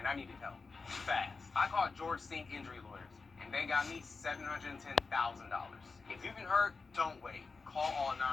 I needed help. Fast. I called George Sink Injury Lawyers, and they got me $710,000. If you've been hurt, don't wait. Call all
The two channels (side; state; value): right; quieter; 4.3 dB